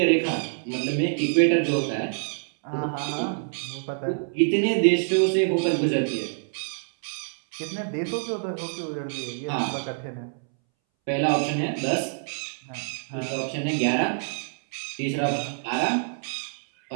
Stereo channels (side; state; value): left; silent; 61 dB below the other